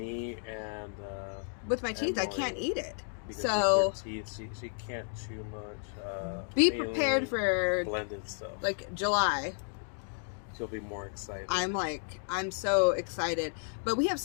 and with my teeth, I Emily, can't eat it. because So with her teeth, she can't chew much. be mainly prepared for blended stuff. like July. She'll be more excited. I'm so excited. But we have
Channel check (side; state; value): right; silent; 56 dB below the other